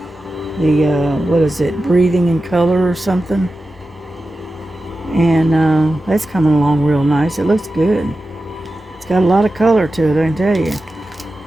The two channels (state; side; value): normal; both; correlation 0.93